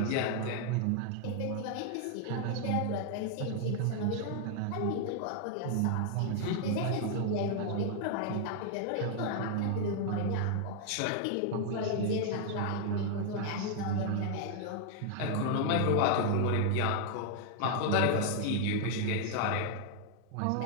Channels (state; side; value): different; both; correlation 0.00